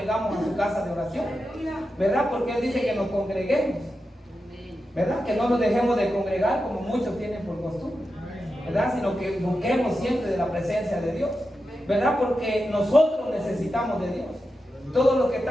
a su casa de oración, ¿verdad? Porque Él dice que nos congreguemos, ¿verdad? Que no nos dejemos de congregar como muchos tienen por costumbre, ¿verdad? Sino que busquemos siempre de la presencia de Dios, ¿verdad? Porque nosotros necesitamos de Dios. Todos los que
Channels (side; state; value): both; normal; correlation 0.90